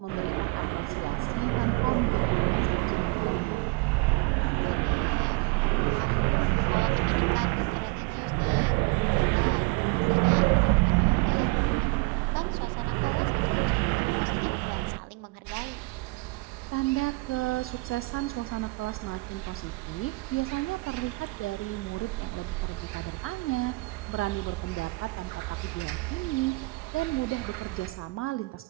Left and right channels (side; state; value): left; quieter; 26.0 dB